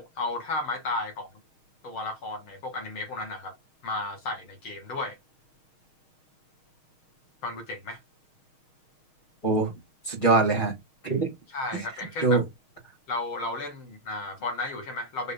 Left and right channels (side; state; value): right; late; 6.4 ms